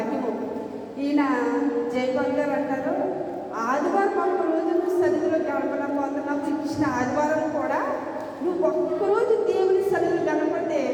ఈయన జయపాల్ గారు అంటారు, ఆదివారం ఒక్కరోజు నువ్వు సన్నిధిలో గడపలేకపోతున్నావు, ఇచ్చిన ఆదివారం కూడా నువ్వు ఒక్కరోజు దేవుని సన్నిధిలో గడపడితే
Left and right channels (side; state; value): both; identical; correlation 1.00